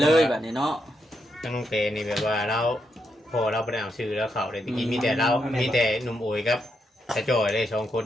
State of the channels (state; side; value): normal; both; correlation 0.81